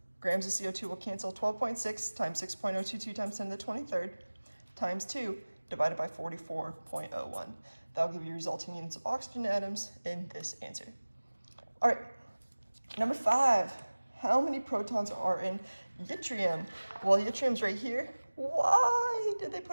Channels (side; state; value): both; inverted; correlation -1.00